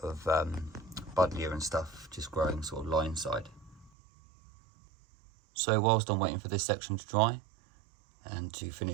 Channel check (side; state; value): left; drops out; at 3.9 s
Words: of buddleia and stuff just growing sort of line side. So whilst I'm waiting for this section to dry and to